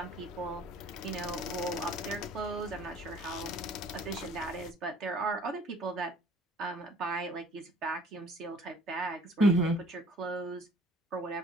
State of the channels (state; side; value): normal; both; correlation 0.54